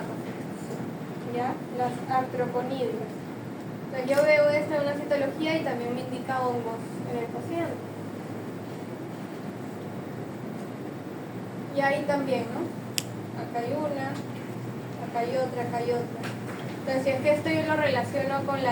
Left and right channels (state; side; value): identical; both; correlation 1.00